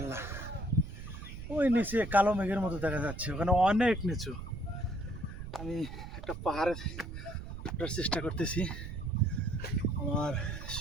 ওই নিচে কালো মেঘের মতো দেখা যাচ্ছে, ওখানে অনেক নিচু। আমি একটা পাহাড়ে ওঠার চেষ্টা করতেছি। আমার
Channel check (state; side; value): noise; right; rumble, 9 dB below the sound